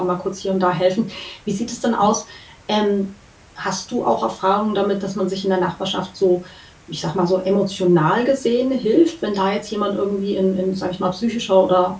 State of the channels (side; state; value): both; identical; correlation 1.00